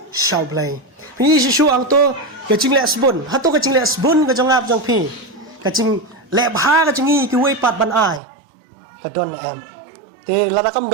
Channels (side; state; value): left; drops out; at 8.2 s